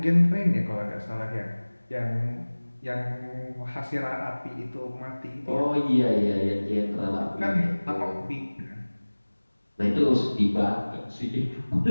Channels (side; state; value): both; inverted; correlation -1.00